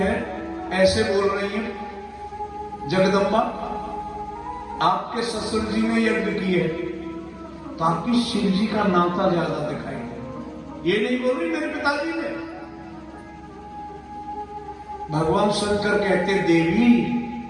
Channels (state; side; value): identical; both; correlation 1.00